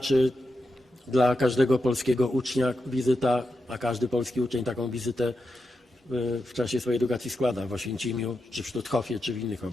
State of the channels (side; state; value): both; normal; correlation 0.88